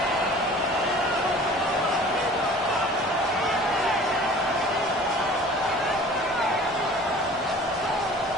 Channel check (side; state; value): both; normal; correlation 0.46